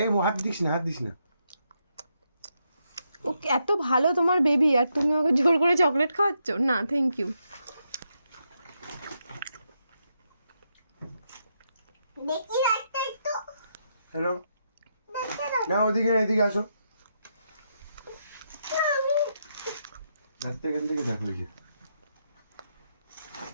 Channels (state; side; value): inverted; both; correlation -0.80